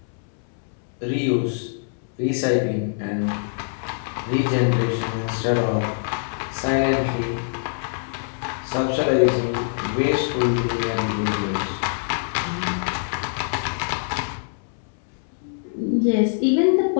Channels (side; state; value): right; silent; 62 dB below the other